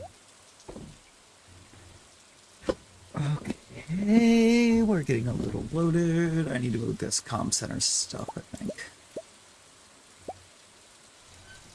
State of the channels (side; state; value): both; identical; correlation 1.00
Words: Okay, we're getting a little loaded. I need to move this comm center stuff, I think.